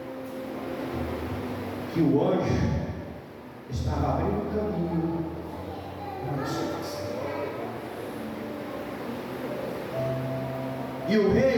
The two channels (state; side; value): identical; both; correlation 1.00